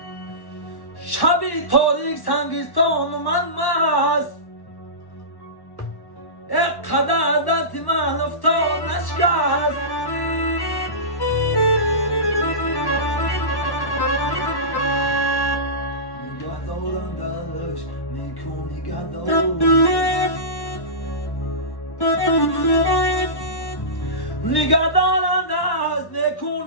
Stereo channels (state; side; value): late; right; 1.1 ms